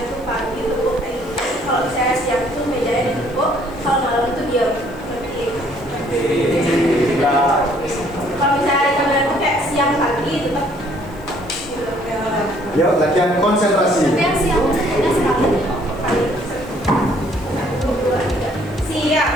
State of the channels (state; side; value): noise; left; hiss, 27 dB below the sound